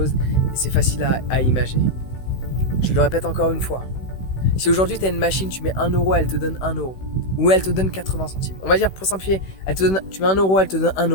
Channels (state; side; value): late; right; 16 ms